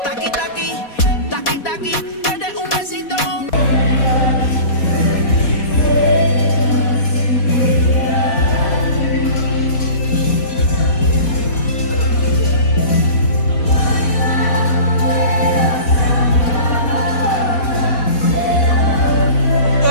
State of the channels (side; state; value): right; late; 4.2 ms